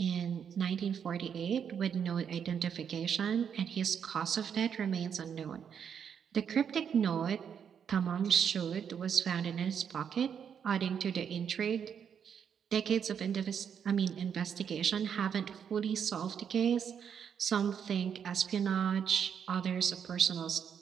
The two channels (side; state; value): left; quieter; 7.7 dB